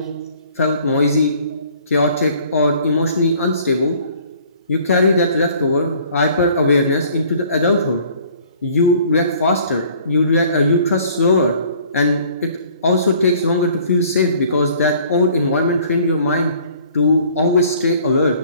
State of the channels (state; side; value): inverted; both; correlation -0.55